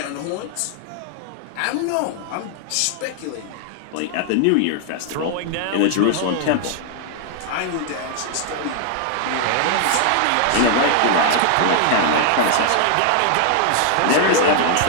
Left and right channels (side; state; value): both; different; correlation 0.00